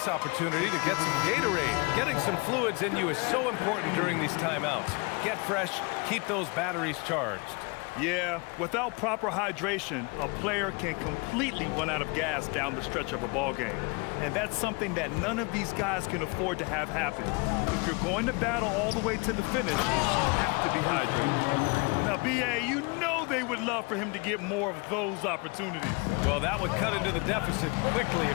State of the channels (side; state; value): right; quieter; 29.7 dB